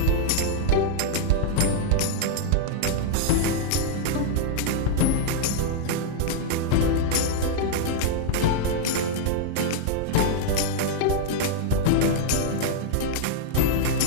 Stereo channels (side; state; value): both; different; correlation -0.01